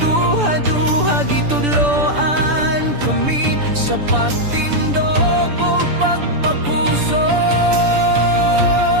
gitudloan kami sa pagtindog ug pagpapusog.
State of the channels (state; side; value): late; left; 6.9 ms